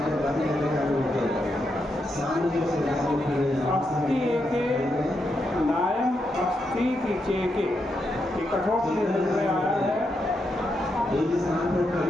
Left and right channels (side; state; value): both; normal; correlation 0.83